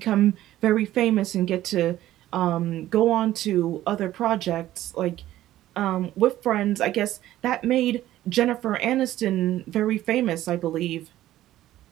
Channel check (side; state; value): left; quieter; 14.1 dB